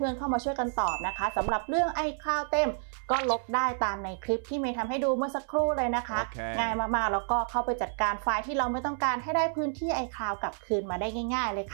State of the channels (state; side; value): silent; left; 58 dB below the other